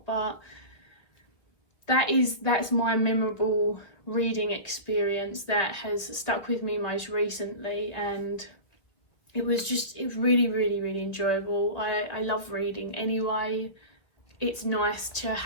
but that's my memorable reading experience that has stuck with me most recently, and it was really, really, really enjoyable. I love reading anyway. It's nice to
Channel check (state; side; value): late; right; 2.0 ms